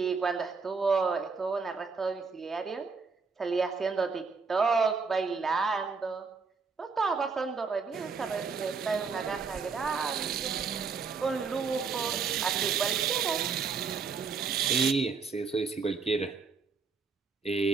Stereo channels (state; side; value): quieter; left; 5.1 dB